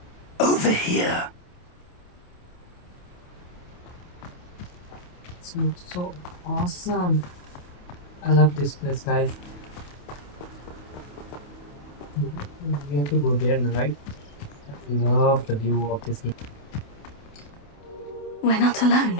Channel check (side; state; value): right; late; 28 ms